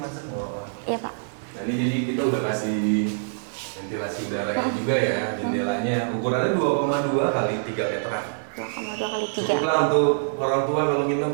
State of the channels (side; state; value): left; silent; 62 dB below the other